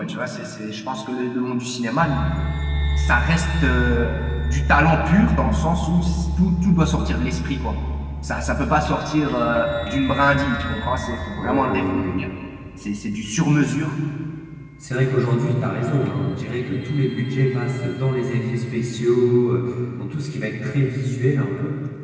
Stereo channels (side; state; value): both; identical; correlation 1.00